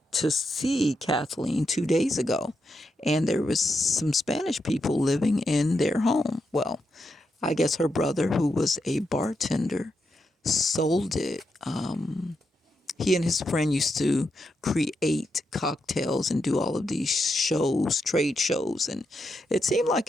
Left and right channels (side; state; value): both; normal; correlation 0.84